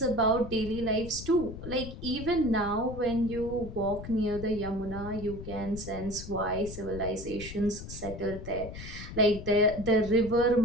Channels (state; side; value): noise; left; rumble, 11 dB below the sound